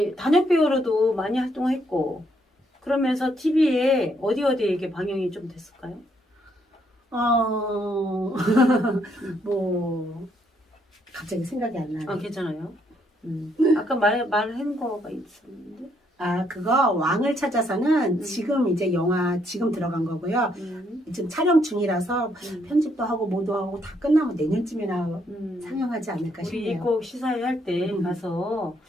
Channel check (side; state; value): both; normal; correlation 0.72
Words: 단역 배우로도 많이 활동했고 그러면서 TV에 어디 이게 방영이 좀 됐을까요? 뭐 갑자기 생각이 안 나네. 괜찮아요. 아까 말한 거가 있었는데. 아, 그거 왕을 찾아서는 지금 이제 영화 지금 들어간 거고요. 지금 촬영 중이라서 편집도 하고 뭐도 하고 다 끝나면 내년쯤이나 상영하지 않을까 우리 싶네요. 꼭 시사회 할 때 가서